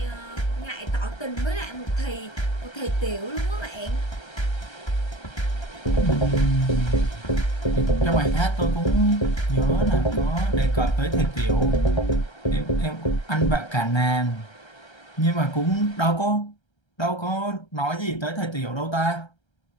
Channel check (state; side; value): late; right; 1.3 ms